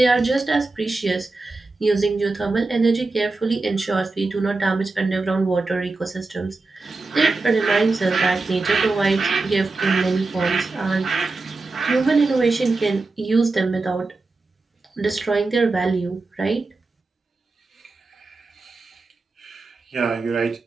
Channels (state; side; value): quieter; left; 3.5 dB